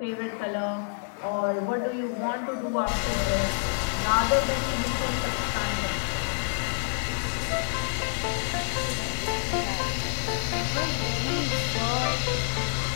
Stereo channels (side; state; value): right; silent; 60 dB below the other